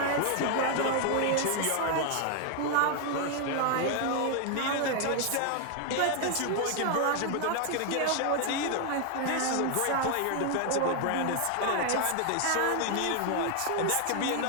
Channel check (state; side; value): different; both; correlation 0.00